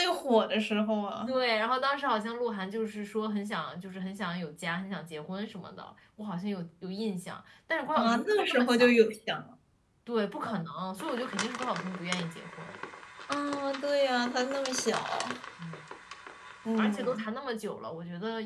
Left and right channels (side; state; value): both; identical; correlation 1.00